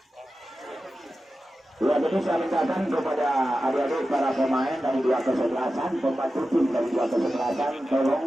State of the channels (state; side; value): normal; both; correlation 0.93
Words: Ya, jadi saya mintakan kepada adik-adik para pemain dari dua kesebelasan, pembantu tim dari dua kesebelasan,